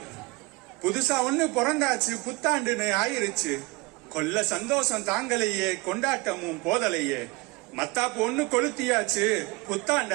புதுசா ஒண்ணு பிறந்தாச்சு, புத்தாண்டுன்னு ஆயிருச்சு. கொல்ல சந்தோஷம் தாங்கலையே, கொண்டாட்டமும் போதலையே. மத்தாப்பு ஒண்ணு கொளுத்தியாச்சு,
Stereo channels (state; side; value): quieter; left; 25.4 dB